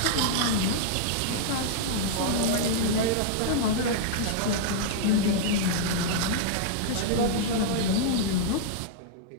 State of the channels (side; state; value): both; different; correlation -0.01